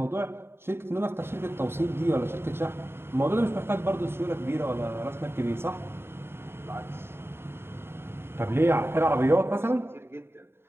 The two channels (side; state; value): left; late; 0.11 ms